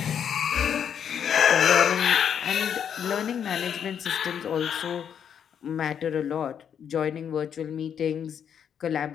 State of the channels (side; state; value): right; quieter; 8.3 dB